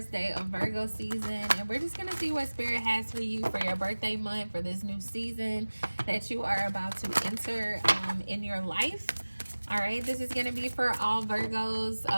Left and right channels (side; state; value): both; inverted; correlation -1.00